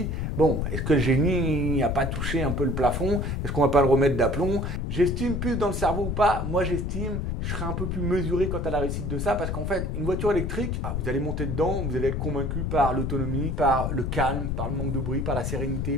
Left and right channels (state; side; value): noise; left; rumble, 2 dB below the sound